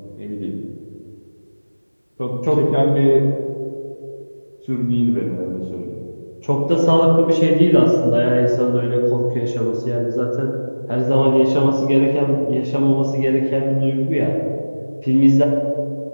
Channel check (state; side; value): inverted; both; correlation -1.00